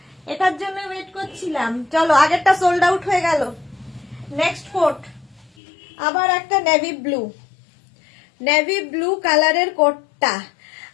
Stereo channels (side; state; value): right; drops out; at 5.5 s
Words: এটার জন্য ওয়েট করছিলাম। চলো, আগেরটা সোল্ড আউট হয়ে গেল। নেক্সট কোড আবার একটা নেভি ব্লু, নেভি ব্লু কালারের কোটটা।